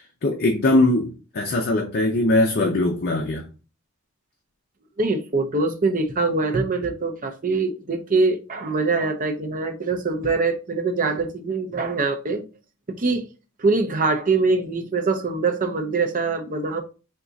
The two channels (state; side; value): normal; both; correlation 0.31